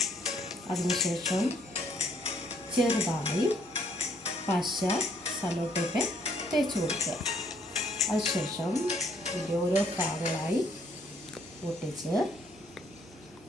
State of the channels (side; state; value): both; normal; correlation 0.67